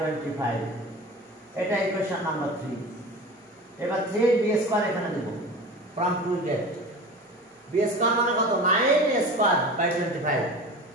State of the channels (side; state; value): both; normal; correlation 0.34